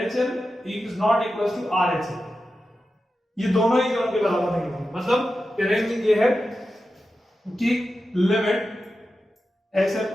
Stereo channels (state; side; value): normal; both; correlation 0.91